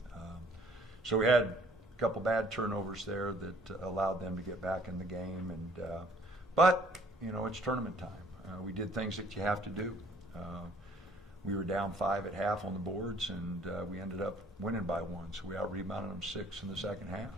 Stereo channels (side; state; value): both; normal; correlation 0.58